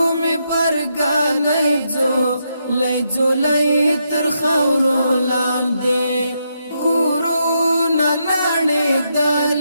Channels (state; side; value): inverted; both; correlation -0.80